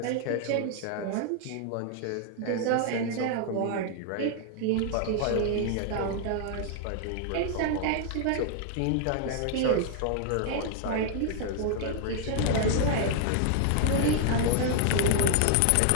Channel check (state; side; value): different; both; correlation 0.00